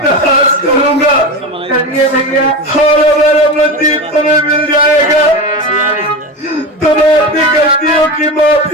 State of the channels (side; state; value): both; normal; correlation 0.24